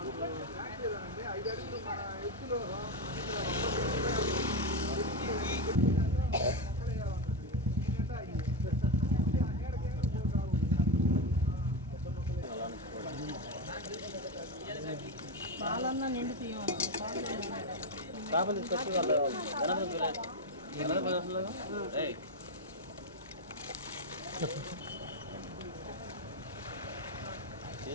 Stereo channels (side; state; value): both; normal; correlation 0.11